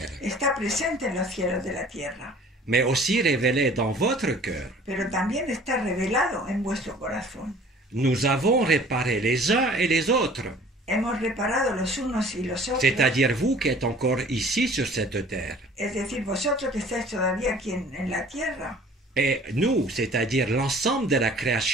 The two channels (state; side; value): normal; both; correlation 0.50